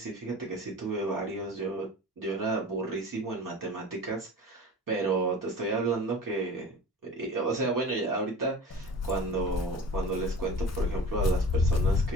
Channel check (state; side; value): normal; both; correlation 0.38